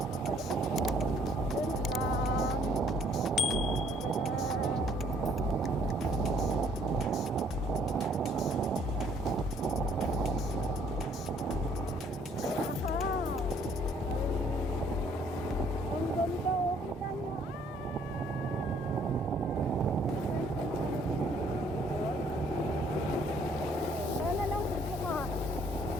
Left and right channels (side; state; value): both; normal; correlation 0.63